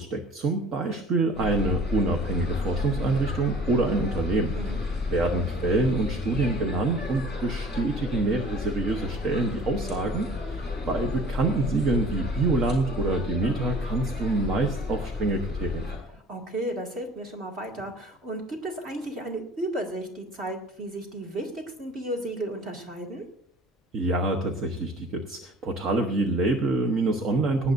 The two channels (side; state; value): both; normal; correlation 0.48